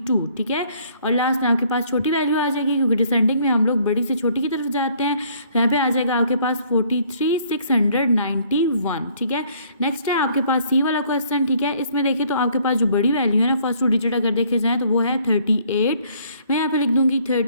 ठीक है। और लास्ट में आपके पास छोटी वैल्यू आ जाएगी क्योंकि डिसेंडिंग में हम लोग बड़ी से छोटी की तरफ जाते हैं, तो यहाँ पे आ जाएगा आपके पास 43, 691, ठीक है। नेक्स्ट है आपके पास सी वाला क्वेश्चन, ठीक है। इसमें देखिए तो आपके पास जो बड़ी वैल्यू है ना फर्स्ट 2 डिजिट अगर देखे जाए तो वो है 38, मैं यहाँ पे लिख दूंगी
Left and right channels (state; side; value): inverted; both; correlation -0.62